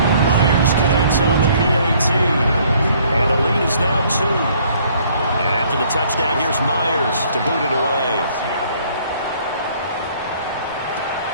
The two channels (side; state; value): both; inverted; correlation -0.61